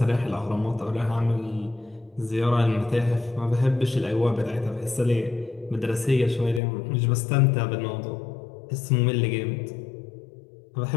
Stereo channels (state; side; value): drops out; right; at 6.6 s